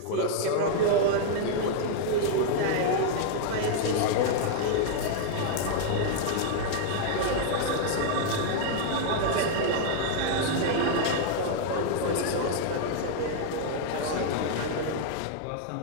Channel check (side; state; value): both; different; correlation -0.01